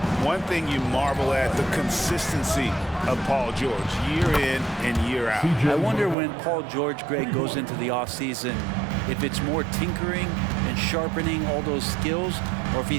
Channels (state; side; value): drops out; left; at 6.2 s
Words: One thing you marvel at, the consistency of Paul George, year in and year out. I wonder when Paul George, Greg, goes into the offseason, if it's more tinkering and sharpening all those skills, or if